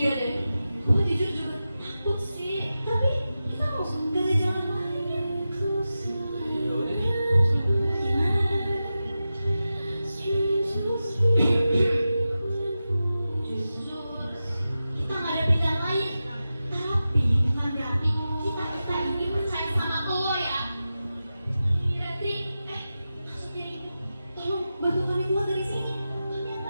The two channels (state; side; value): inverted; both; correlation -0.93